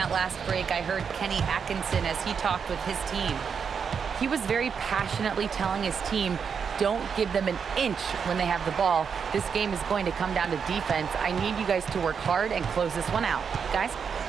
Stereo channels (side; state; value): left; quieter; 6.5 dB